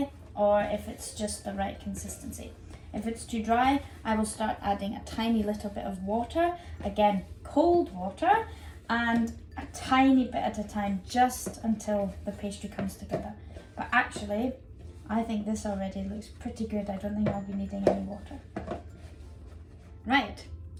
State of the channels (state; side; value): identical; both; correlation 1.00